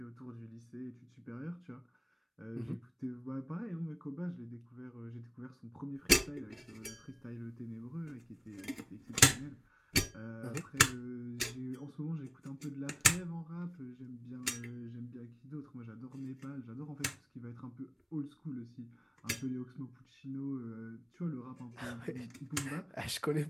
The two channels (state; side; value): identical; both; correlation 1.00